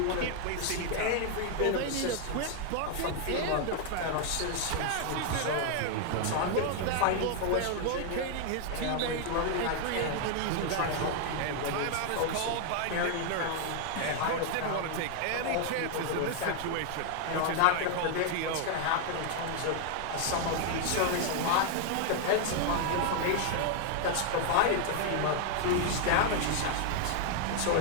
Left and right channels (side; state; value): both; different; correlation 0.00